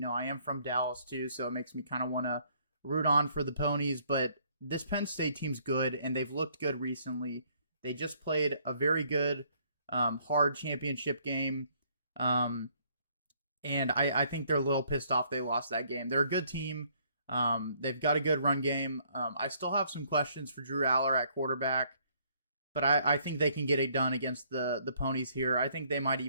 I am from Dallas too, so it makes me kind of want to root on for the Ponies. But this Penn State team's good, and they've looked good recently. They just played a very good, hard championship game. And I think they're a little pissed off they lost that game. They're a good team. They've got a good run game. I still have some questions for Drew Aller at quarterback, but I think they can get it done against the Ponies here. I think they might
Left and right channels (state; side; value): inverted; both; correlation -0.65